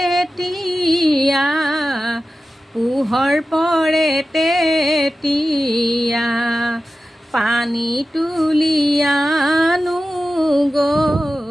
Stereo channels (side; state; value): both; normal; correlation 0.94